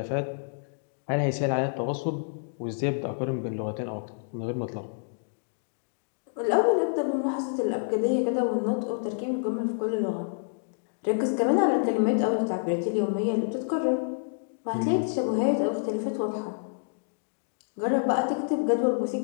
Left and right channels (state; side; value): silent; right; digital silence